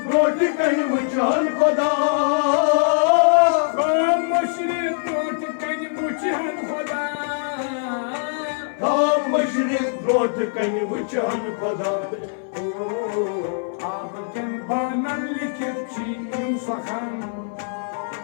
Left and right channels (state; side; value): silent; right; 64 dB below the other